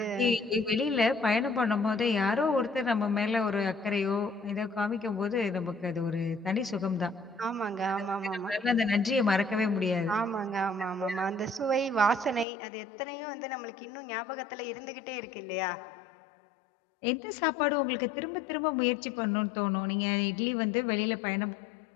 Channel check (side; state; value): right; drops out; at 12.5 s